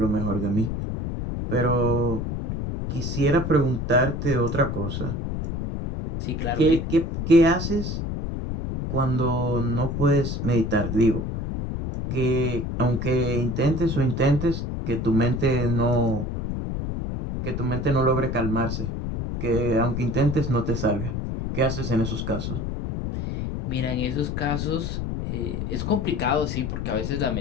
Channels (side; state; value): left; noise; rumble, 3 dB below the sound